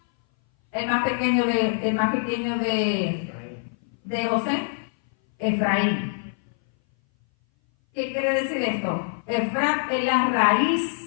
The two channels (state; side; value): silent; right; 59 dB below the other